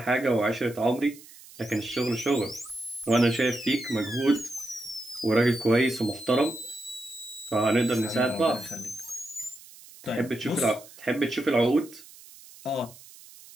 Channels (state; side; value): noise; right; hiss, 20 dB below the sound